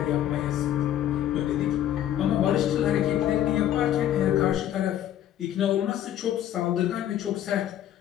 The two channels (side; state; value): right; quieter; 11.5 dB